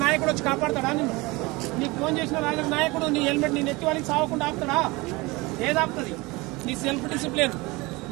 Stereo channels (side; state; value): left; quieter; 23.5 dB